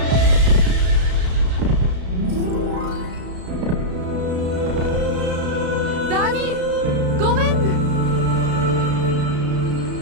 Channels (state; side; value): late; left; 33 ms